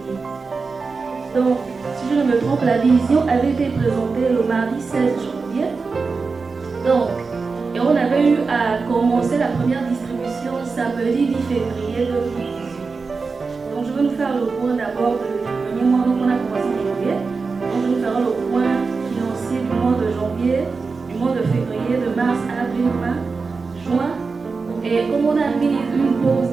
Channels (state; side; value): quieter; left; 4.5 dB